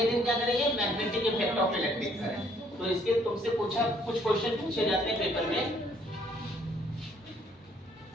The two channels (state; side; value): normal; both; correlation 0.64